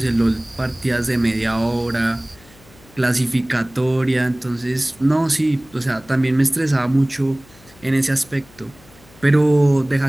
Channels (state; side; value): noise; left; hum, 26 dB below the sound